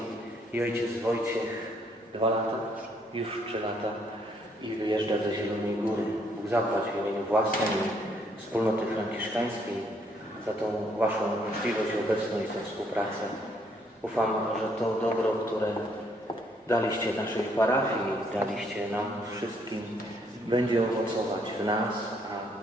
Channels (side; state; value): both; normal; correlation 0.69